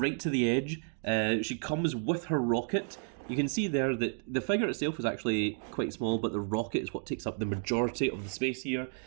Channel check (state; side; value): silent; left; 56 dB below the other